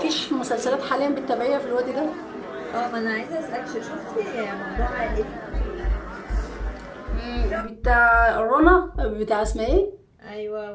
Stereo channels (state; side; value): identical; both; correlation 1.00